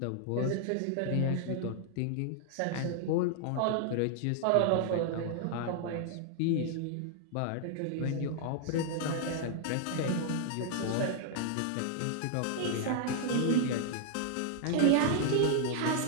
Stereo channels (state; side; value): different; both; correlation -0.01